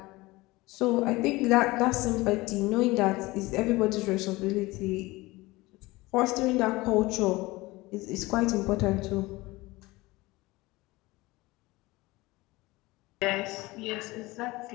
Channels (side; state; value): right; quieter; 20.9 dB